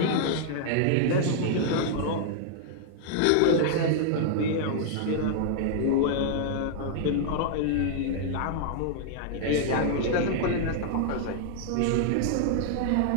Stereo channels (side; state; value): both; different; correlation -0.01